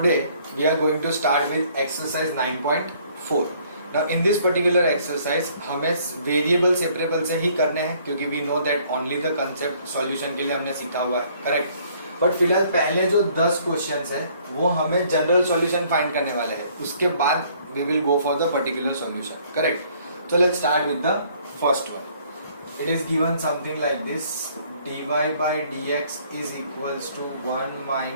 we are going to start with exercise 9.4. Now in this particular exercise हमें variable separable से ही करने हैं क्योंकि we know that only the concept solution के लिए हमने सीखा हुआ है, करेक्ट. बट फिलहाल पहले जो 10 क्वेश्चंस है वो हमें जनरल सॉल्यूशन फाइंड करने वाले हैं. उसके बाद we will go for the particular solution, correct. So let's start with the first one. It is given something like this: dy by dx is equals to 1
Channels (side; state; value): both; inverted; correlation -0.61